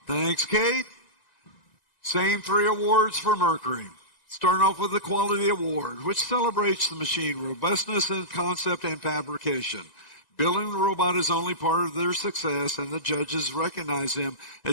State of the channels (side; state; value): right; late; 1.9 ms